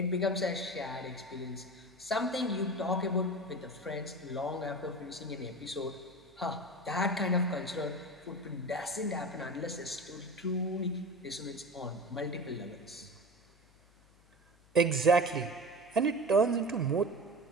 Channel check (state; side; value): noise; left; hum, 29 dB below the sound